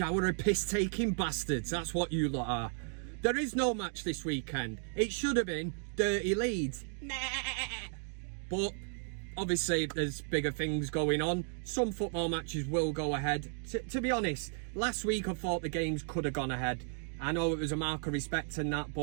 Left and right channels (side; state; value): left; silent; 55 dB below the other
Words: of piss-taking bastards. That's what you lot are. There is no match this weekend. It should have been Dirty Leeds. But obviously there's bigger things going on. Some football matches will go ahead. To be honest, last week I thought the games could have gone ahead. I know it was a mark of respect and that,